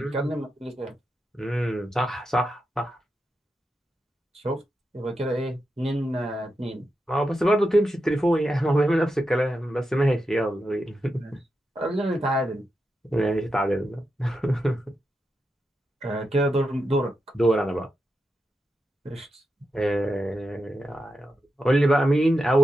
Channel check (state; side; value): normal; both; correlation 0.88